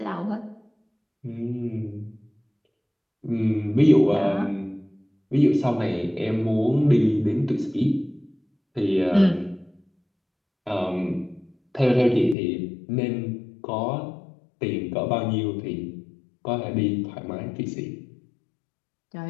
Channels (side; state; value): right; drops out; at 12.4 s